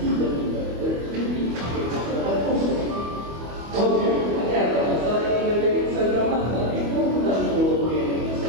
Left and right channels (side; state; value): left; late; 25 ms